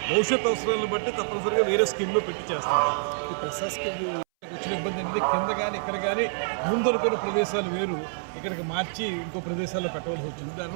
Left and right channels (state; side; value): silent; left; 60 dB below the other